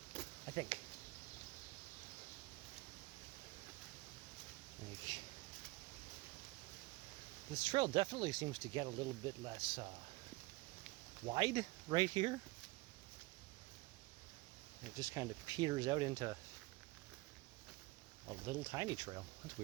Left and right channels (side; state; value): left; quieter; 22.1 dB